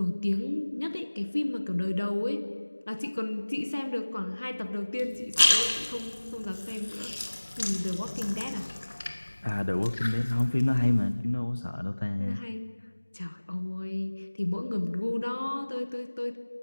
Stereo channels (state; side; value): inverted; both; correlation -1.00